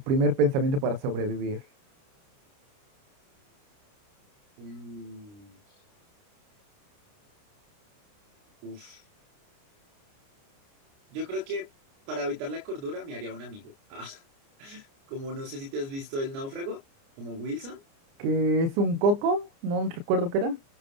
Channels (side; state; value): left; late; 29 ms